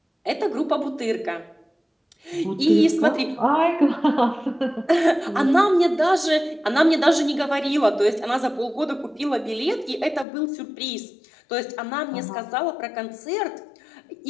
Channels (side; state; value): right; drops out; at 10.2 s